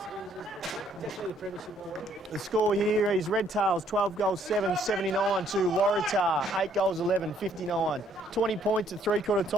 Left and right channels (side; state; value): both; normal; correlation 0.65